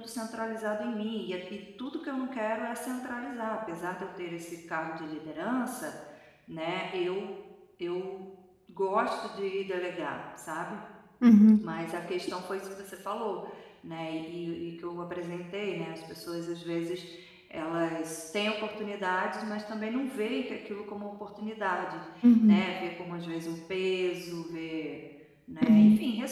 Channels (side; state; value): both; identical; correlation 1.00